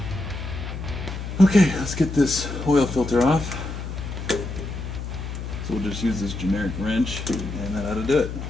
Okay, let's get this oil filter off. So we'll just use this generic wrench, and that ought to do it.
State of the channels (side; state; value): left; noise; hum, 7 dB below the sound